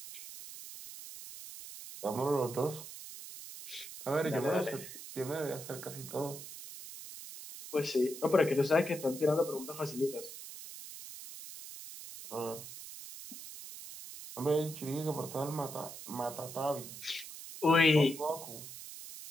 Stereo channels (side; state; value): right; noise; hiss, 12 dB below the sound